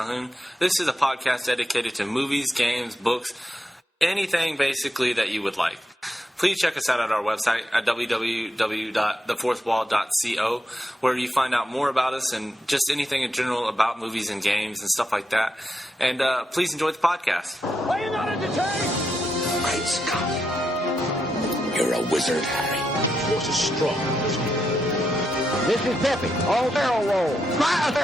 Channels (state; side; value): normal; both; correlation 0.84